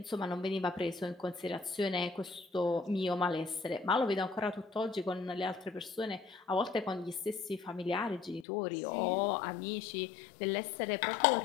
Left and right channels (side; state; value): right; drops out; at 8.5 s